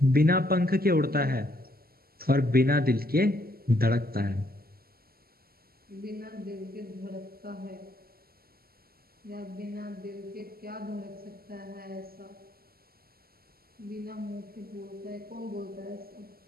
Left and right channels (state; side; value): late; left; 0.44 ms